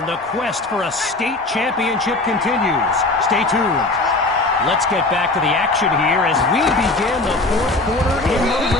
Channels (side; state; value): right; quieter; 3.0 dB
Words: the quest for a state championship continues. Stay tuned. Let's get back to the action here as we begin the fourth quarter in the